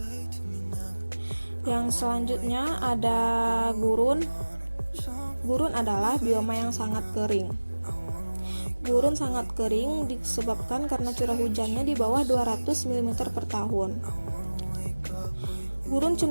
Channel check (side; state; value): both; inverted; correlation -1.00